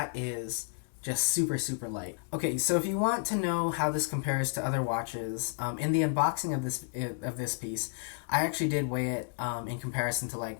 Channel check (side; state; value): right; silent; 56 dB below the other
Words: is just super, super light. Okay, so if you want to know how this compares to other watches, in the unboxing of this piece, I actually did weigh it in comparison to